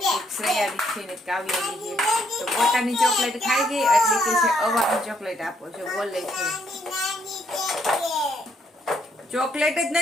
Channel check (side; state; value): both; normal; correlation 0.71